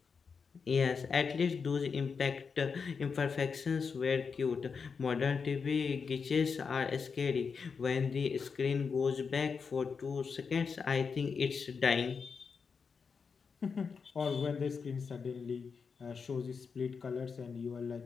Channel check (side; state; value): right; quieter; 5.6 dB